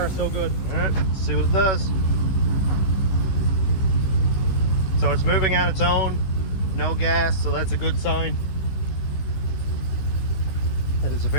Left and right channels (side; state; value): right; late; 16 ms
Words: so good. All right, let's see what it does. So it's moving on its own, no gas, so that's a good sign. And it's a